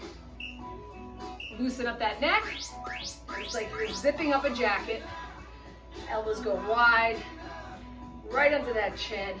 Loosen up that neck. It's like you're zipping up a jacket. Elbows go wide, right under that chin.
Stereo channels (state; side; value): identical; both; correlation 1.00